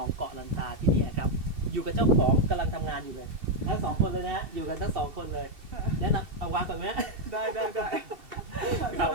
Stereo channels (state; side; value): late; left; 2.6 ms